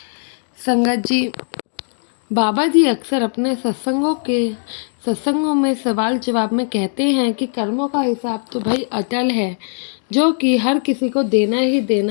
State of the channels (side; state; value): right; silent; 62 dB below the other